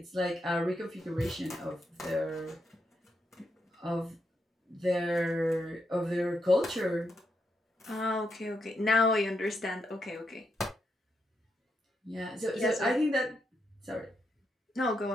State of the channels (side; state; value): both; normal; correlation 0.82